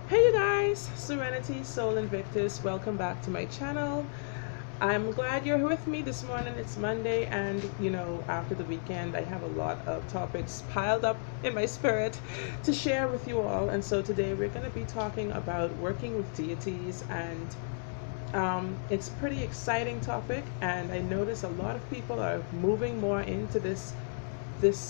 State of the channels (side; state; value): right; silent; digital silence